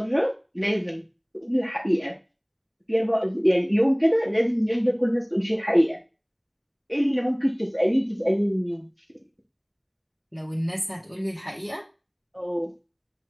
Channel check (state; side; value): identical; both; correlation 1.00